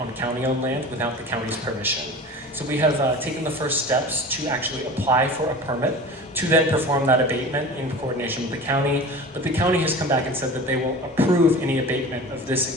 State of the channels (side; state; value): both; normal; correlation 0.36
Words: county-owned land without the county's permission. So we have taken the first steps to actually apply for a permit to then perform that abatement in coordination with the county. But the county has come back and said that they will approve any abatement of this